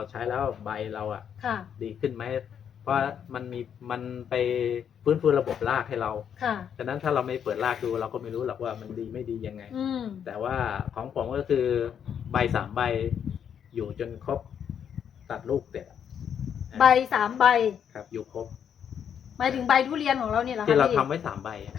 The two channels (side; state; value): right; quieter; 8.3 dB